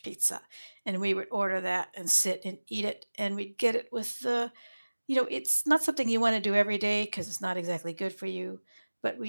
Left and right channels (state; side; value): inverted; both; correlation -1.00